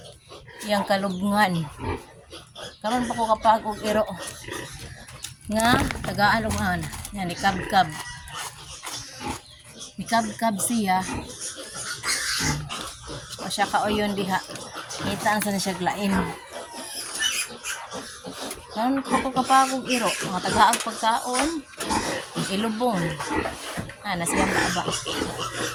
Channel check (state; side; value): identical; both; correlation 1.00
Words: iyang kalubngan. Karon pa ko kapag og iro nga tagaan og ana. Yan ni kabkab. Ni kabkab siya. O siya kaoyon diha. Ngita sa siya glain. Karon pa ko kapag og iro nga tagaag pagkaon ilubong. Ana siyang baaba.